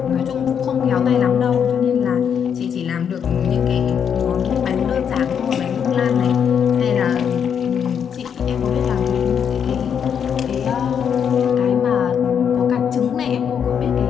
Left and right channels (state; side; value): quieter; right; 7.8 dB